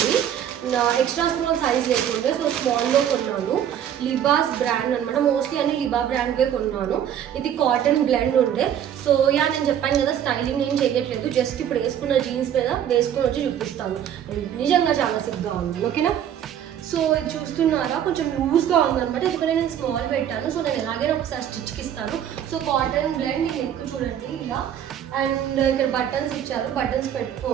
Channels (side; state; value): left; quieter; 9.8 dB